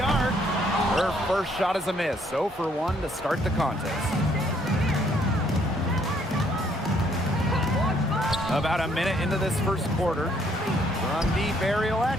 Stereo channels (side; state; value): both; normal; correlation 0.67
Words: arc. Her first shot is a miss. 0 for 1 to start the contest. About a minute into this first quarter. From deep, Ariel